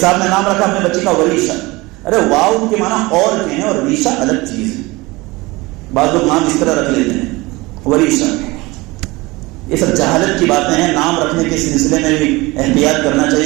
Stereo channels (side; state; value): left; quieter; 22.3 dB